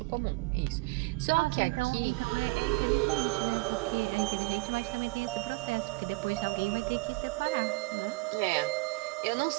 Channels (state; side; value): quieter; left; 24.3 dB